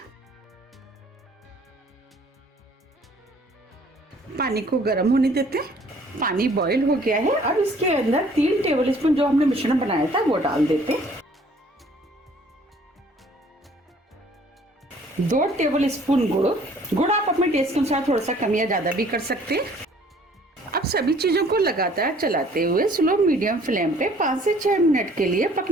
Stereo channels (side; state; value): both; normal; correlation 0.56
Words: पानी को गर्म होने देते हैं। पानी बॉईल हो गया है। अब इसके अंदर 3 टेबल स्पून जो हमने मिश्रण बनाया था वो डाल देते हैं। 2 टेबल स्पून गुड़ आप अपने टेस्ट के अनुसार थोड़ा सा कम या ज्यादा भी कर सकते हैं। अब सभी चीजों को लगातार चलाते हुए स्लो मीडियम फ्लेम पे 5 से 6 मिनट के लिए